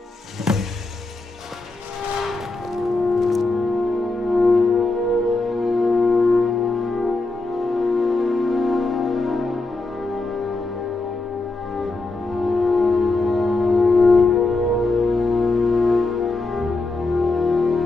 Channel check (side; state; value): right; quieter; 3.2 dB